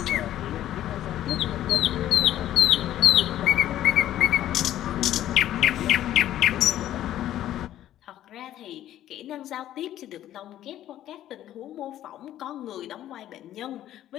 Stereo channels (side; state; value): right; quieter; 12.6 dB